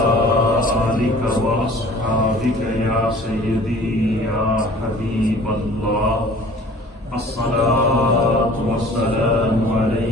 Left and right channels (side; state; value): both; normal; correlation 0.48